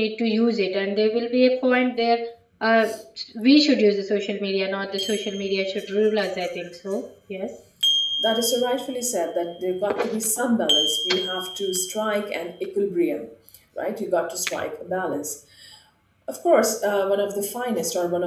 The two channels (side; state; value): both; identical; correlation 1.00